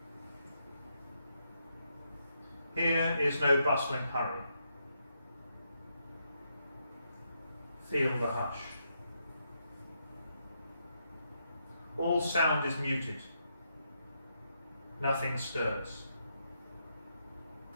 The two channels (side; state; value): both; inverted; correlation -0.80